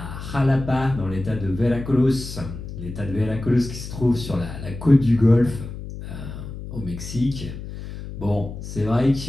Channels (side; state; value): left; noise; hum, 10 dB below the sound